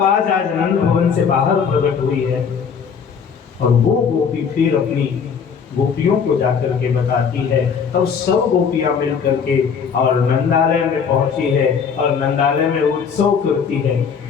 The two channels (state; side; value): quieter; right; 6.5 dB